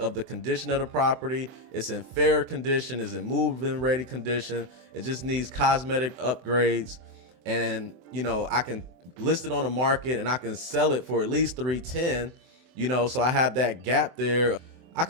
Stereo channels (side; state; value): left; late; 24 ms